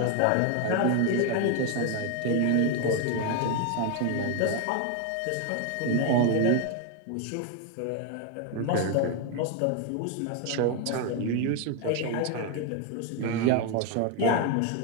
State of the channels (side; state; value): both; different; correlation 0.01